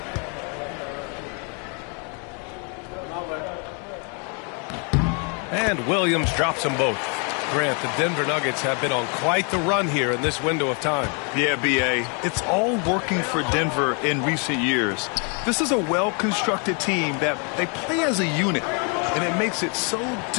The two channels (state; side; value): quieter; right; 36.9 dB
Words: And Williams drops them both. Grant, the Denver Nuggets have been on quite the run here in this window of time. Yeah, B.A. It's all working for Denver in recent years. This is a well-constructed team that they play as a unit, and it makes it so